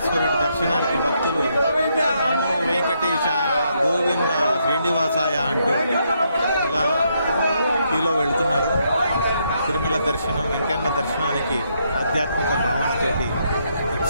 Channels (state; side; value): inverted; both; correlation -0.76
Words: దర్శనానికి భక్తులు నమో వెంకటేశాయ గోవింద శ్రీనివాసాయ అంటూ ఇలా క్యూలో వెళుతున్నారు. తిరుమల దర్శనం వెంకన్న దర్శనానికి ఆధ్యాత్మిక భావనతోటి